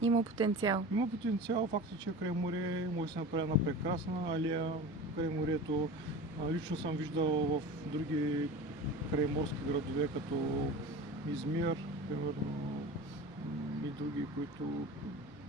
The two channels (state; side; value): normal; both; correlation 0.34